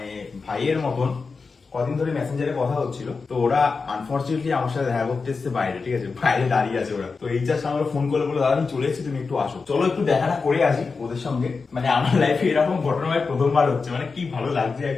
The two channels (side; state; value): right; quieter; 4.6 dB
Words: ভাইয়ের মতন কদিন ধরে মেসেঞ্জারে কথা হচ্ছিল, তো ওরা আনফর্চুনেটলি আমার সাথে দেখা করতে এসছে বাইরে, ঠিক আছে, বাইরে দাঁড়িয়ে আছে ওরা। তো এই জাস্ট আমার ফোন করে বলে দাদা আমি চলে এসেছি, তুমি একটু আসো, চলো একটু দেখাটা করে আসি ওদের সঙ্গে। মানে আমার লাইফে এরকম ঘটনা ভাই প্রথমবার হচ্ছে, মানে কি ভালো লাগছে